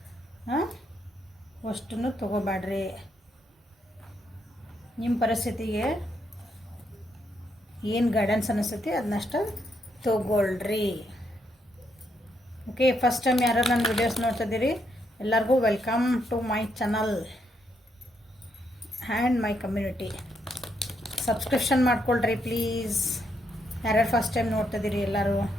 ಅಷ್ಟನ್ನು ತೊಗೋಬ್ಯಾಡ್ರಿ. ನಿಮ್ಮ ಪರಿಸ್ಥಿತಿಗೆ ಏನು ಗೈಡೆನ್ಸ್ ಅನ್ನಿಸ್ತೈತಿ ಅದನ್ನಷ್ಟ ತೊಗೊಳ್ರಿ. ಓಕೆ, ಫಸ್ಟ್ ಟೈಮ್ ಯಾರು ನನ್ನ ವಿಡಿಯೋಸ್ ನೋಡ್ತಿದ್ದೀರಿ ಎಲ್ಲರಿಗೂ welcome to my channel and my community. Subscription ಮಾಡ್ಕೊಳ್ರಿ ಪ್ಲೀಸ್. ಯಾರ್ಯಾರು ಫಸ್ಟ್ ಟೈಮ್ ನೋಡ್ತಿದ್ದೀರಿ ಎಲ್ಲರೂ,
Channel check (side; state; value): both; normal; correlation 0.77